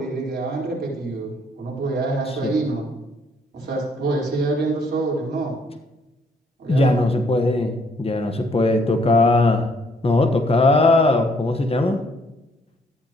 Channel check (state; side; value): normal; both; correlation 0.66